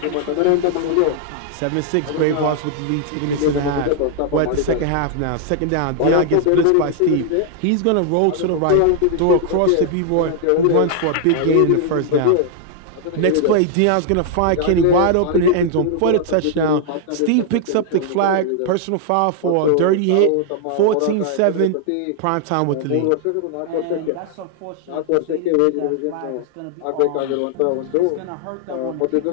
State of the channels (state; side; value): different; both; correlation 0.00